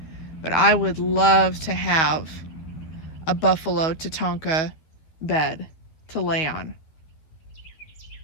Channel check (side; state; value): right; late; 13 ms